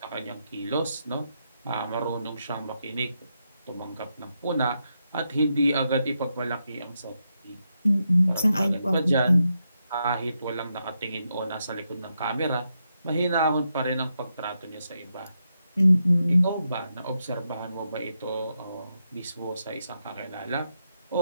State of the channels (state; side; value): inverted; both; correlation -0.83